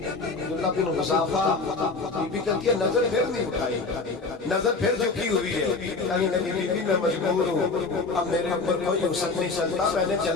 عبداللہ بن حذافہ بی بی کہتی ہے نظر پھر نہیں اٹھائی، نظر پھر جھکی ہوئی ہے، کہنے لگی بی بی میں مجبور ہوں، اب میرے اوپر کوئی حسن نہیں چلتا، میں نے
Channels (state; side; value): quieter; right; 3.9 dB